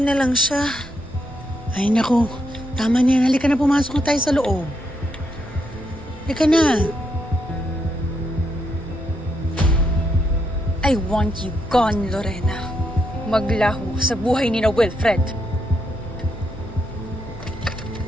lang siya. Ay nako, tama niya. Halika na, pumasok na tayo sa loob. Halika na. I want you gone, Lorena. Maglaho sa buhay ni na Wilfred.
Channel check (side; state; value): both; normal; correlation 0.79